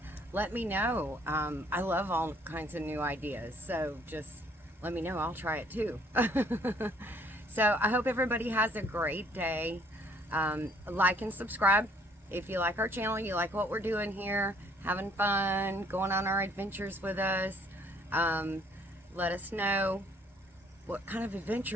let me know. I love all kinds of new ideas, so just let me know. I'll try it too. So I hope everybody has a great day. Like and subscribe if you like our channel, you like what we're doing here, having fun, going on our adventures with us. Let us know what kind of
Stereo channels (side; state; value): both; normal; correlation 0.62